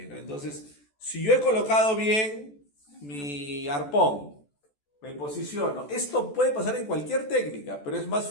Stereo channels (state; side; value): late; right; 14 ms